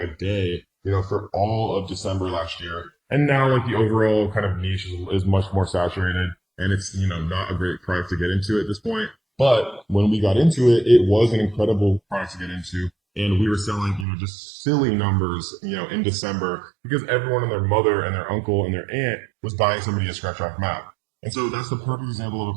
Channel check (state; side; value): drops out; left; at 14.1 s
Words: day, for all of December last year. And now like the overall kind of niche is much more saturated, and it's not a great product to get into at this point. But when we got into it, it was an incredible product to get into. And we were selling, just silly numbers, in December because everyone and their mother and their uncle and their aunt was buying somebody a Scratch Off Map. And so that's the perfect example of a